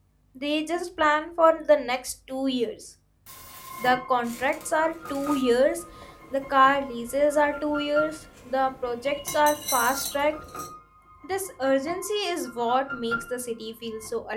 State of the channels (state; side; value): identical; both; correlation 1.00